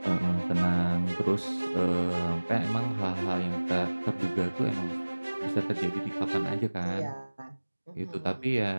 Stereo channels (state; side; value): inverted; both; correlation -1.00